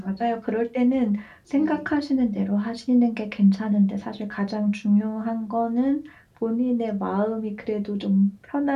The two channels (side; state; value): both; identical; correlation 1.00